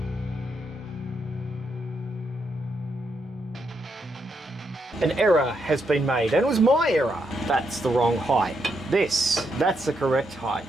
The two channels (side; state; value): both; normal; correlation 0.80